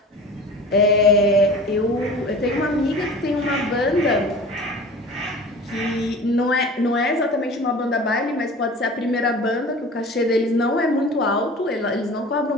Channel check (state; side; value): normal; both; correlation 0.39